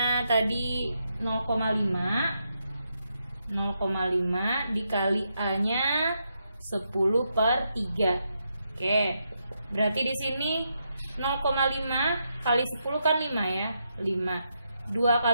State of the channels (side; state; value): both; inverted; correlation -0.82